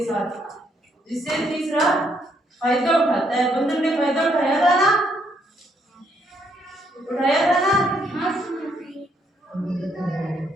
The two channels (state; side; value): normal; both; correlation 0.72